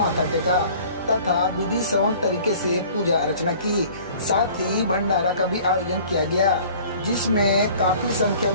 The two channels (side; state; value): both; inverted; correlation -0.49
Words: टेका तथा विधि सवन तरीके से पूजा अर्चना की। साथ ही भंडारा का भी आयोजन किया गया, जिसमें काफी संख्या